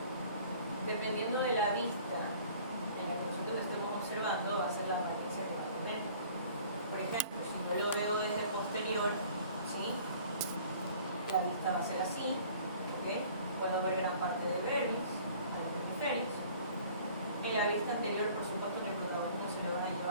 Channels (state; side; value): inverted; both; correlation -0.51